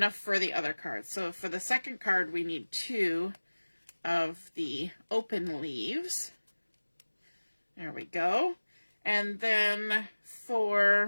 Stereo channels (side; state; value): both; inverted; correlation -1.00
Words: for the other card. So for the second card, we need 2 of the open leaves. There we go. And then